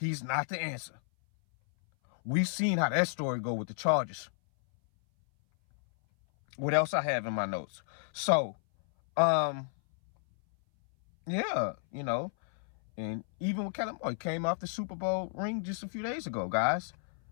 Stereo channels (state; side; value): silent; right; 57 dB below the other